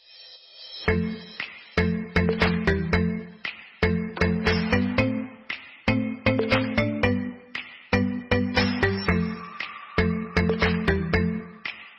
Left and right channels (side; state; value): both; identical; correlation 1.00